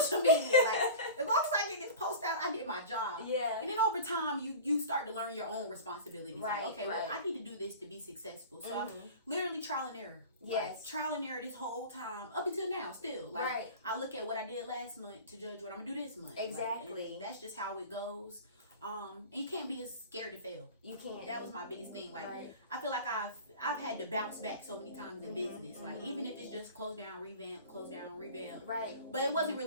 media. Like, as long as I get this post out, I did my job. Yeah. And then over time, you start to learn your own responsibilities. Right. Like, okay, well, I need to do this to be successful. So I'm literally trial and error. Yes. Like, trial and error this whole time, up until now, still. Like, I look at what I did last month to judge what I'm gonna do this month. Exactly. Like, that's just how it goes. And you can't be as scared to fail. You can't. That was my biggest thing. Like, I feel like I've had to bounce back so many times in business. Like, even if it's just close down, revamp, close down, revamp. Right. But it wasn't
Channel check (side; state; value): both; inverted; correlation -0.36